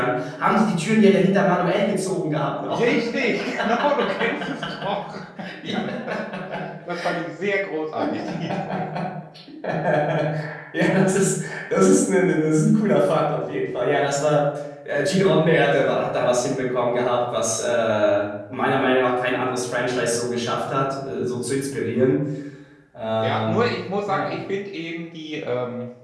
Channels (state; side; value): identical; both; correlation 1.00